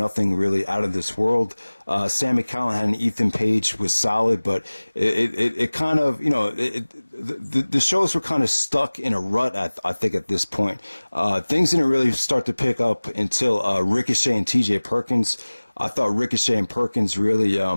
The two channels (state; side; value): inverted; both; correlation -1.00